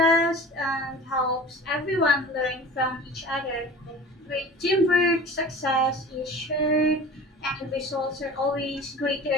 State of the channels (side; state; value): both; normal; correlation 0.39